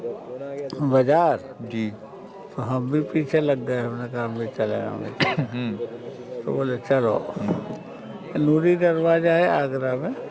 बाजार, जी। तो हम भी पीछे लग गए। हमने कहा हम भी चले, हम भी चले। तो बोले चलो। नूरी दरवाजा है आगरा में,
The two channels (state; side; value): identical; both; correlation 1.00